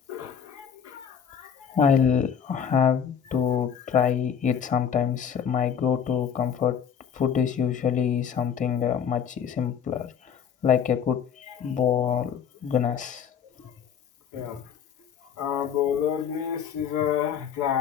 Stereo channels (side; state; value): right; quieter; 7.9 dB